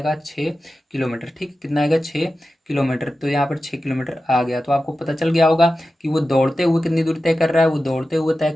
6 किलोमीटर, ठीक। कितना आएगा, 6 किलोमीटर। तो यहाँ पर 6 किलोमीटर आ गया। तो आपको पता चल गया होगा कि वो दौड़ते हुए कितनी दूरी तय कर रहा है, वो दौड़ते हुए तय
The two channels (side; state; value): both; normal; correlation 0.93